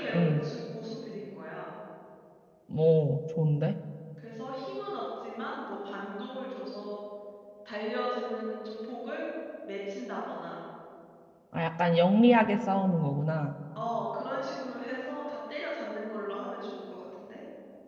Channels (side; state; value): both; identical; correlation 1.00